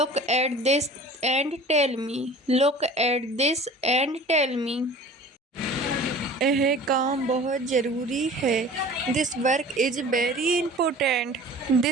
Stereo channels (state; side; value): normal; both; correlation 0.43